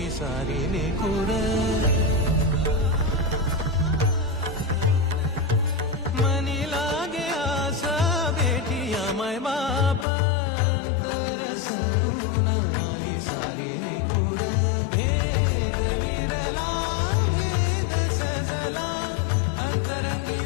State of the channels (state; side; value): drops out; right; at 10.1 s